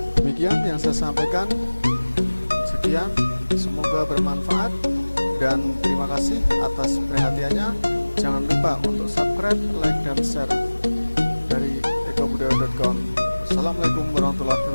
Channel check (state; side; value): inverted; both; correlation -1.00